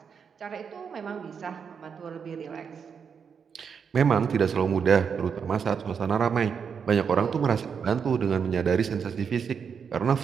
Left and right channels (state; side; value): quieter; left; 6.6 dB